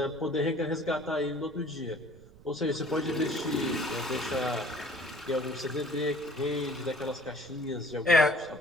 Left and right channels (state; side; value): noise; right; rumble, 22 dB below the sound